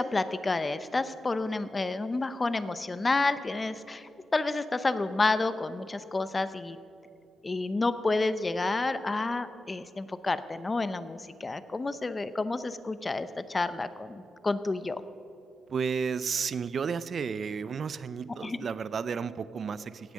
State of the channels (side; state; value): both; normal; correlation 0.92